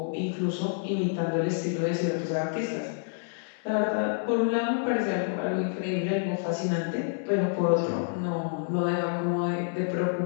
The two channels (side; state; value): right; silent; 59 dB below the other